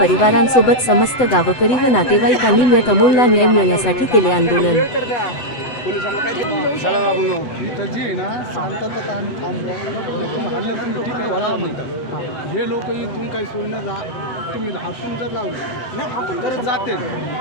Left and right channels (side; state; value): right; late; 7.9 ms